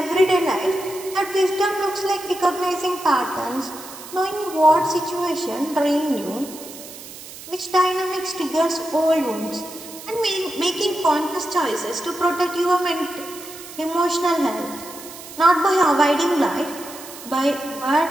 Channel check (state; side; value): noise; right; hiss, 15 dB below the sound